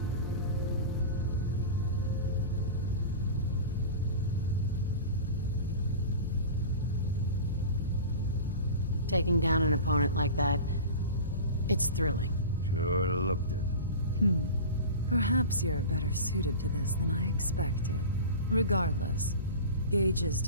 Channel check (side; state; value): both; inverted; correlation -0.32